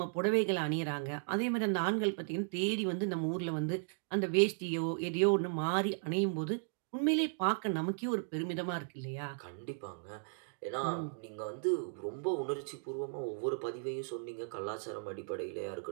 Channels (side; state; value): left; silent; digital silence